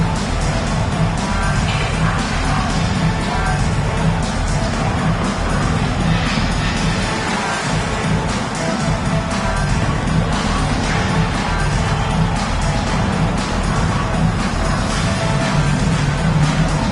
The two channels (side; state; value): both; identical; correlation 1.00